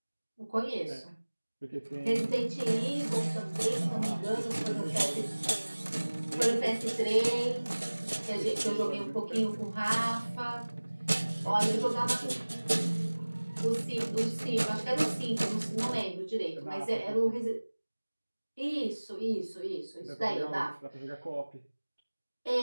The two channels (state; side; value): inverted; both; correlation -1.00